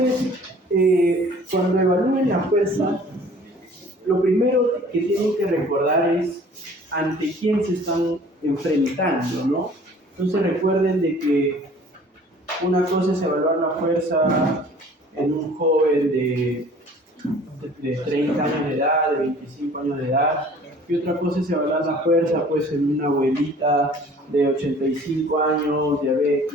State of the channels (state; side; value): normal; both; correlation 0.50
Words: cuando evalúen la fuerza, lo primero que tienen que recordar es ante quién se están enfrentando, ¿no? Entonces recuerden de que una cosa es evaluar la fuerza en un joven de 30 años de edad, de 25 años de edad, y otra cosa es evaluar la fuerza pues en una abuelita de 85 años,